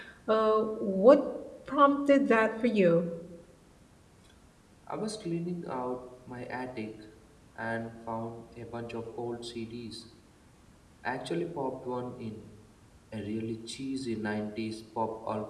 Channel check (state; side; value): identical; both; correlation 1.00